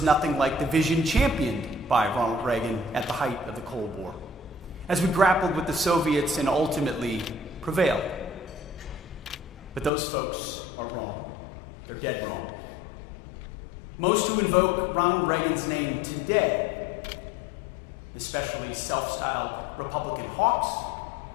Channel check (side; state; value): right; drops out; at 9.9 s